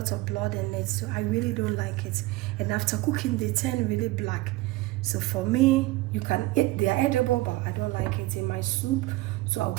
of blood in it, so I really don't like it, and after cooking they turn really black. So for me, you can eat, they are edible, but I don't like it in my soup, so I'll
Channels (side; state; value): left; quieter; 19.6 dB